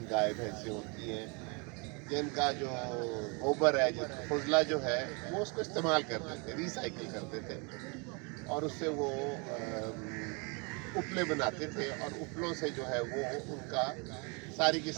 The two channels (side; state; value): left; quieter; 32.4 dB